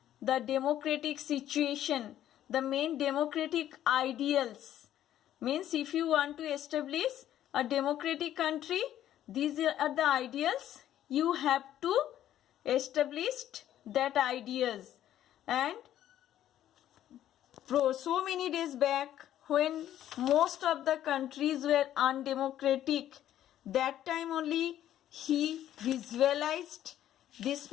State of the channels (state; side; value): quieter; right; 11.9 dB